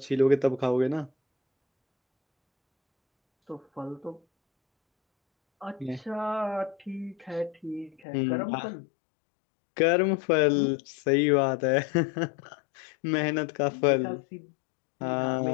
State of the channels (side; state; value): right; drops out; at 8.0 s